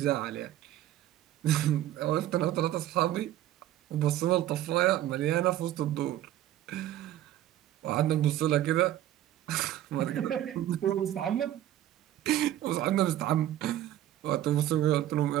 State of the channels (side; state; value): left; quieter; 13.0 dB